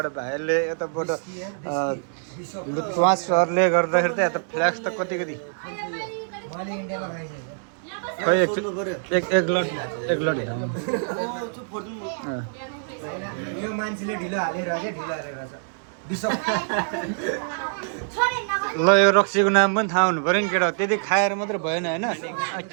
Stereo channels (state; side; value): silent; left; digital silence